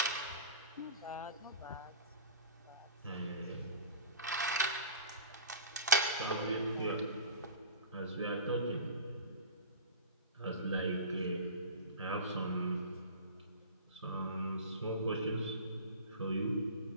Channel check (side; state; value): both; inverted; correlation -0.34